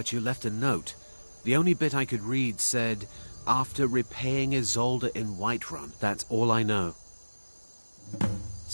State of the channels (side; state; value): both; inverted; correlation -1.00